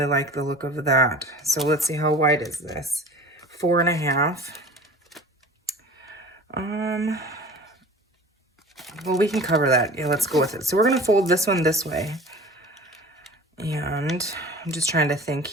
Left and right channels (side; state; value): both; normal; correlation 0.41